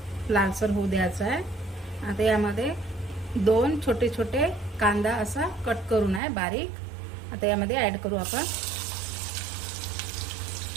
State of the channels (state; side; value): drops out; left; at 6.2 s